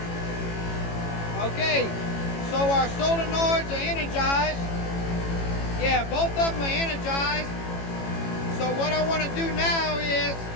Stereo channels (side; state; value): right; late; 18 ms